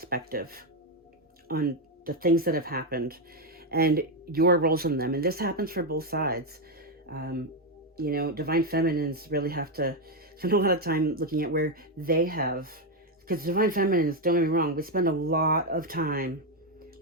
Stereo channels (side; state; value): both; normal; correlation 0.04